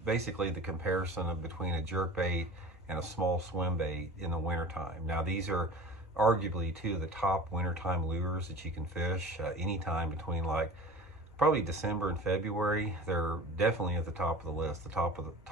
basically the comparison between a jerkbait and a small swim bait in the wintertime. Now these are arguably two of the top wintertime lures that you can fish anytime between like probably December and February. They're definitely at the top of the list, the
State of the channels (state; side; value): normal; both; correlation 0.38